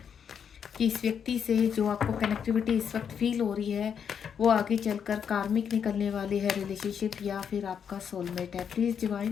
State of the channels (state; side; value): quieter; right; 7.6 dB